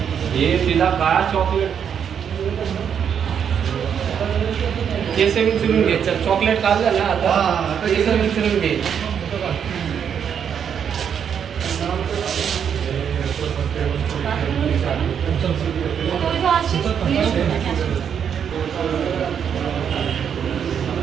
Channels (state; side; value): quieter; left; 7.9 dB